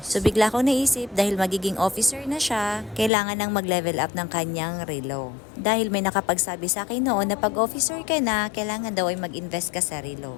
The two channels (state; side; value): drops out; right; at 3.1 s